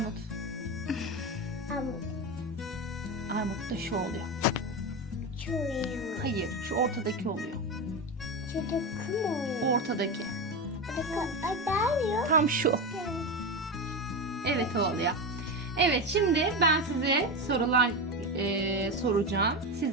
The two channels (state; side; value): normal; both; correlation 0.18